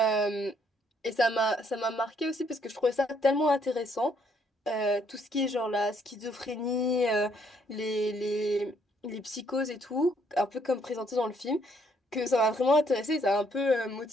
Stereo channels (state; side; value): normal; both; correlation 0.69